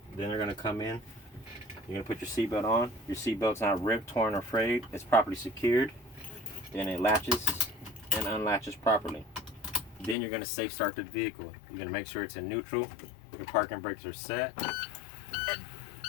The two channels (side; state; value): right; drops out; at 10.2 s